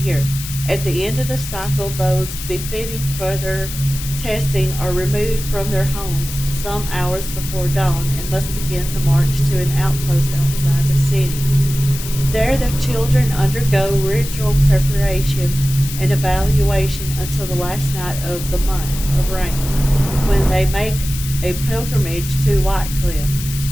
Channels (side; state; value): left; noise; hiss, 9 dB below the sound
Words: At the end of the cycle, those befitting further testing are removed from their homes some hours before dawn and must begin the march to an outpost outside the city. There the children undergo ritual preparation and evaluation until the last night of the month of rain, when they make a pilgrimage to Whitecliff.